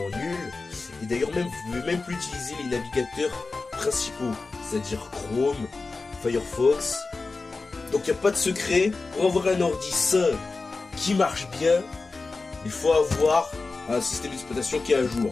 nuls. Et d'ailleurs, même, vous ne pouvez même plus utiliser les navigateurs principaux. C'est-à-dire Chrome, Firefox. Donc, il n'y a pas de secret. Pour avoir un ordi sain qui marche bien, il faut avoir un système d'exploitation qui est à jour.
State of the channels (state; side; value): quieter; right; 3.9 dB